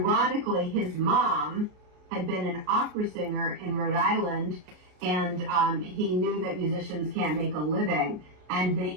his mom had been an opera singer in Rhode Island, and he knew that musicians can't make a living. And the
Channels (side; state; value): left; late; 33 ms